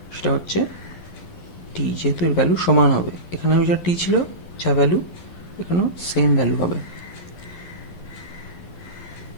সেটা হচ্ছে টি। যেহেতু এর ভ্যালু সমান হবে, এখানে যা টি ছিল যা ভ্যালু এখানেও সেম ভ্যালু হবে।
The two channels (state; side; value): late; right; 12 ms